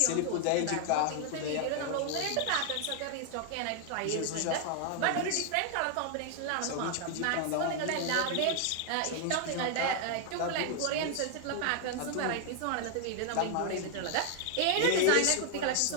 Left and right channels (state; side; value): different; both; correlation 0.00